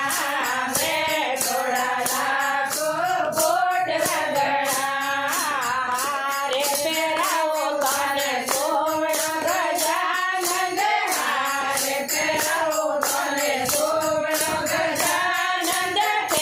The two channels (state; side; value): identical; both; correlation 1.00